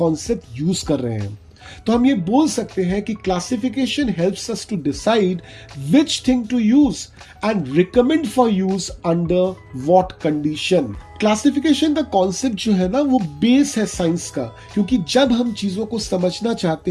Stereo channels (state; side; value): identical; both; correlation 1.00